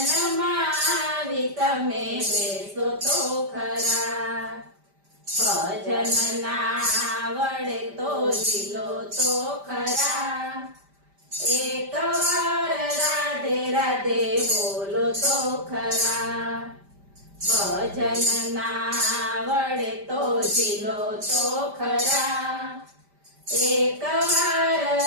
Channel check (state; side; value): late; left; 5.1 ms